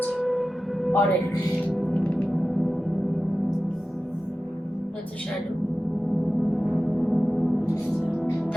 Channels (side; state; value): both; normal; correlation 0.94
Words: Already. That's a shadow.